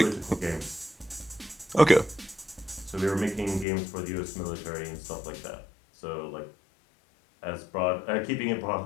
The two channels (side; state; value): right; drops out; at 3.7 s